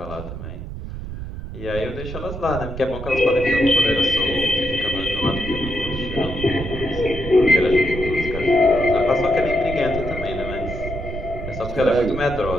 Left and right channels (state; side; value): noise; right; rumble, 8 dB below the sound